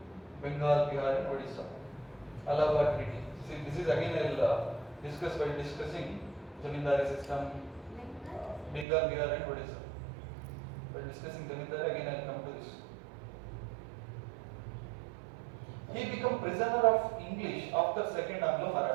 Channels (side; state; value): left; drops out; at 8.8 s